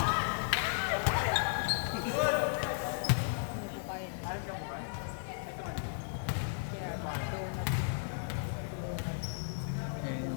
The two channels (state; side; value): silent; right; digital silence